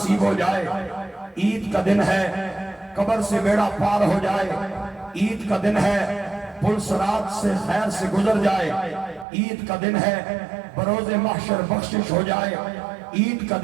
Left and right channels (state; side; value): drops out; left; at 9.2 s